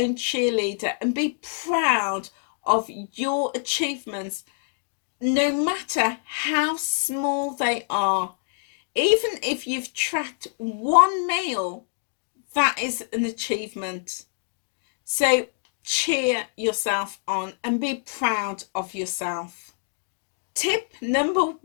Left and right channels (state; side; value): silent; right; digital silence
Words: cheerleader and be proud of your achievements, no matter how small they are. Even if you've tracked one meal, that is an achievement. So cheer yourself on and be proud of yourself. Tip number